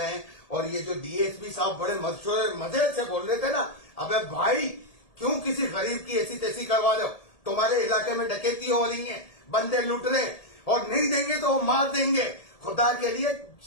और ये जो DSP साहब बड़े मजे से बोल रहे थे ना, अबे भाई क्यों किसी गरीब की ऐसी तैसी करवा लो? तुम्हारे इलाके में डकैती हो रही है, बंदे लूट रहे और नहीं देंगे तो वो मार देंगे। खुदा के लिए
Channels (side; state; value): right; late; 1.7 ms